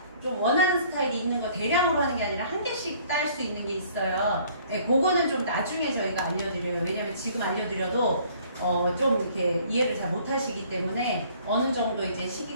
좀 원하는 스타일이 있는 거 대량으로 하는 게 아니라 한 개씩 딸 수 있는 게 있어요. 네, 그거는 좀 나중에 저희가 알려드려요. 왜냐면 지금 알려드려도 좀 이렇게 이해를 잘 못하시기 때문에 어느 정도 이제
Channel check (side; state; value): both; inverted; correlation -0.57